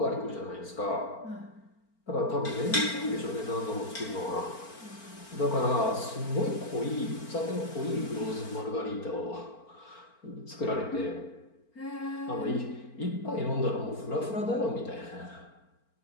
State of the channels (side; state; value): right; late; 4.4 ms